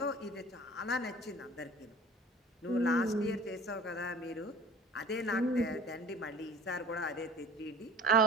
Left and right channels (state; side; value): normal; both; correlation 0.44